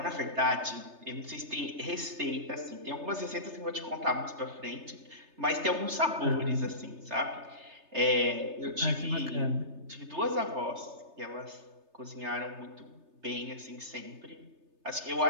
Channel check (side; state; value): left; late; 3.3 ms